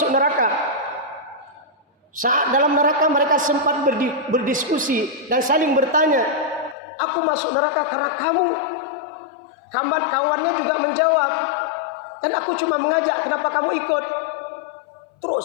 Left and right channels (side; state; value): right; drops out; at 6.8 s